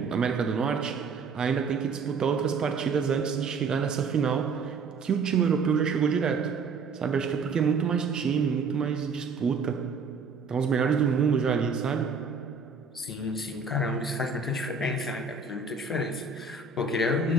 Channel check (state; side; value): quieter; left; 4.4 dB